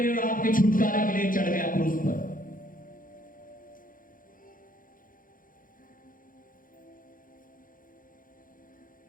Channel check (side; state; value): right; late; 0.40 ms